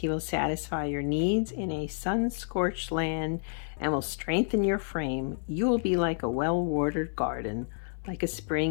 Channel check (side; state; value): right; silent; 55 dB below the other